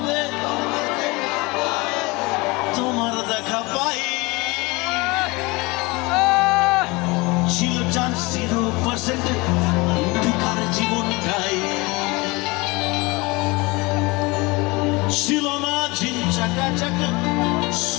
তোমার দেখা পাই। ছিল চান্স 0% বেকার জীবনটাই, ছিল না ঝিনচাকা চাকা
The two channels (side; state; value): right; quieter; 24.6 dB